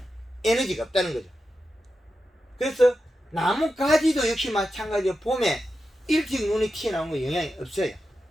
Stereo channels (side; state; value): both; normal; correlation 0.90